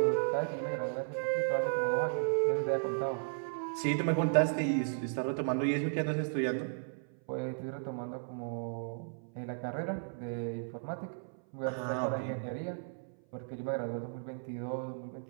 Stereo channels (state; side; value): silent; left; 55 dB below the other